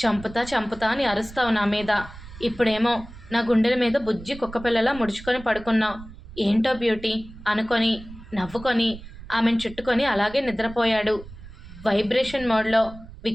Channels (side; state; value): right; noise; rumble, 16 dB below the sound